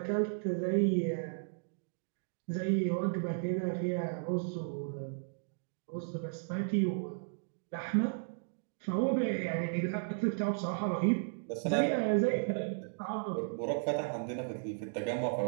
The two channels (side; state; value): left; silent; digital silence